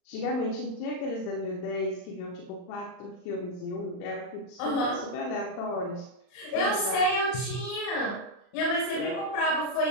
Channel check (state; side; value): late; right; 39 ms